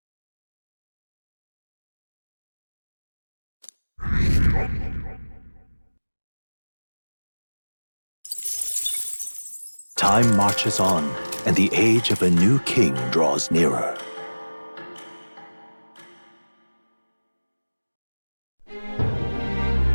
Time marches on, and the age of a new king draws nearer.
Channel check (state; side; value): inverted; both; correlation -1.00